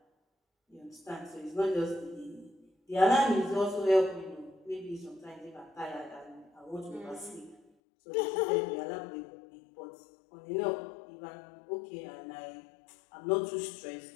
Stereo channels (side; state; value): right; drops out; at 7.6 s